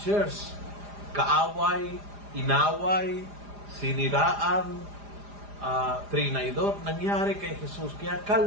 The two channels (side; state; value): left; late; 4.9 ms